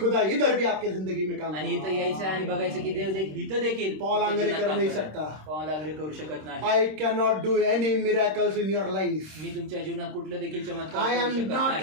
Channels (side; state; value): left; late; 26 ms